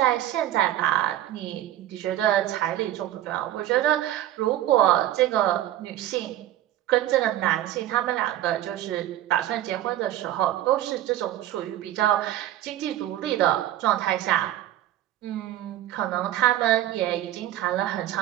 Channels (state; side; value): quieter; left; 13.2 dB